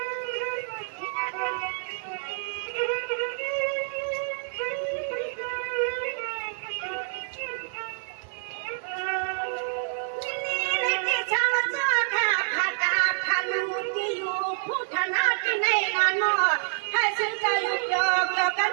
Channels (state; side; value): silent; left; digital silence